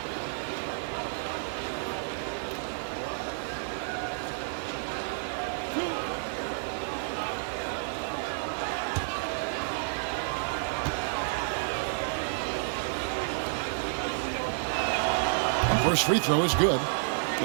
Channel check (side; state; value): left; silent; digital silence